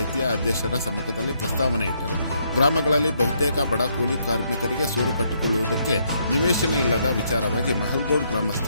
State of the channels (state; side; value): inverted; both; correlation -0.73